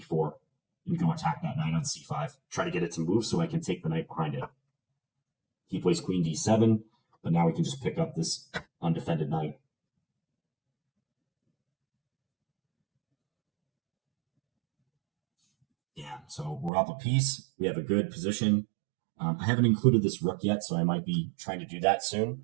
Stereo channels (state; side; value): drops out; left; at 16.7 s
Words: and go attack that knight on c5. Try to get it to move so I can take the knight behind it. He plays queen d7, but now we can just pick up this undefended knight. Yeah, so we're up a piece. We have a good position. I haven't included this rook yet, so I might be trying to do that